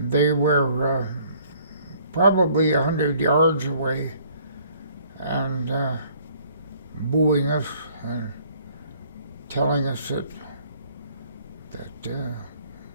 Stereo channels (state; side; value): inverted; both; correlation -0.60